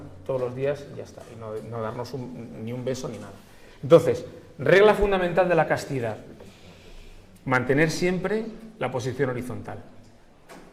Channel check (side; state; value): both; identical; correlation 1.00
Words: todos los días y ya está, y no darnos ni un beso ni nada. Entonces, regla fundamental de la castidad: mantener siempre la posición horizontal